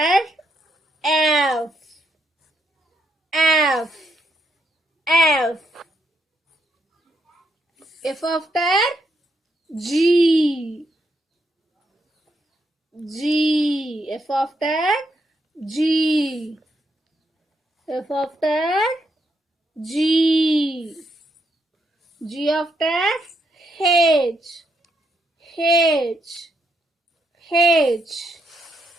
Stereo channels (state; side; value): normal; both; correlation 0.78